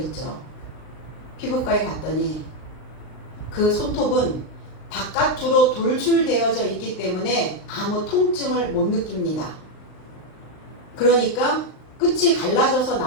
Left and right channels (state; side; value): late; right; 39 ms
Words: 피부과에 갔더니 그 손톱은 바깥으로 돌출되어져 있기 때문에 아무 통증을 못 느낍니다. 그러니까 끝이 갈라져서